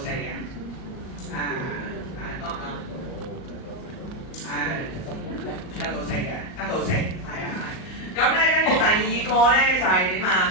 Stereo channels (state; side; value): late; right; 38 ms